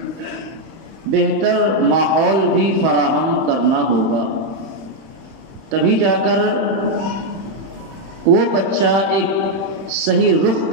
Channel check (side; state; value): left; late; 31 ms